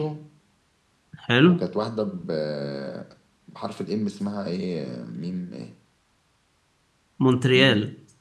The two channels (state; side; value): identical; both; correlation 1.00